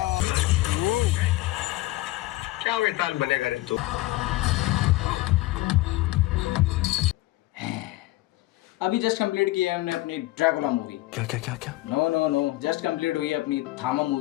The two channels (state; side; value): quieter; right; 18.1 dB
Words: क्या वेताल बनेगा रे तू। अभी जस्ट कंप्लीट की है हमने अपनी ड्रैकुला मूवी। क्या क्या क्या क्या? नो जस्ट कंप्लीट हुई है अपनी थामा